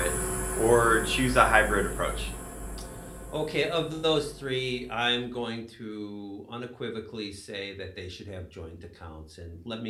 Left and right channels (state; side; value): identical; both; correlation 1.00